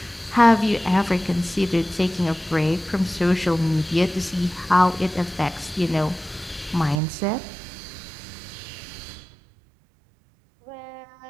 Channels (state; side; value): drops out; left; at 7.0 s